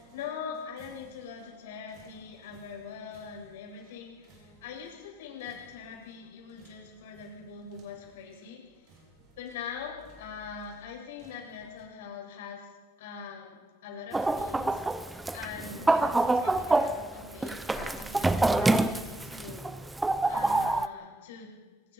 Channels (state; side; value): normal; both; correlation 0.83